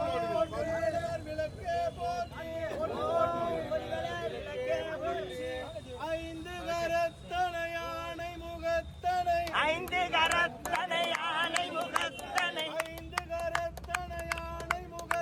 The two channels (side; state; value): both; identical; correlation 1.00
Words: விளக்கே போற்றி ஐந்து கரத்தனை யானை முகத்தனை ஐந்து கரத்தனை யானை முகத்தனை ஐந்து கரத்தனை யானை